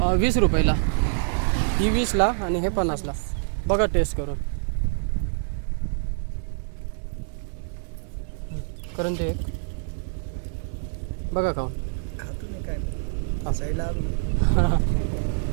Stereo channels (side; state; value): left; silent; digital silence